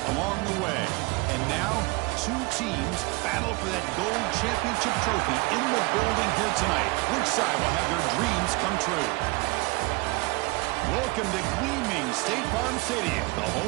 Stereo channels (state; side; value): quieter; left; 25.4 dB